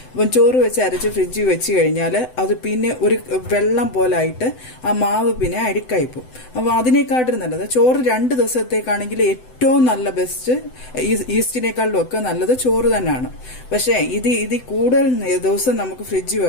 അരച്ച് ഫ്രിഡ്ജിൽ വെച്ച് കഴിഞ്ഞാൽ അത് പിന്നെ ഒരു വെള്ളം പോലായിട്ട് ആ മാവ് പിന്നെ അഴുക്കായിപ്പോവും. അപ്പോൾ അതിനേക്കാട്ടും നല്ലത് ചോറ് 2 ദിവസത്തേക്കാണെങ്കിൽ ഏറ്റവും നല്ല ബെസ്റ്റ്, ഈസ്റ്റിനേക്കാളും ഒക്കെ നല്ലത് ചോറ് തന്നെയാണ്. പക്ഷേ ഇത് കൂടുതൽ ദിവസം നമുക്ക് ഫ്രിഡ്ജിൽ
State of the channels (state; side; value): late; right; 7.9 ms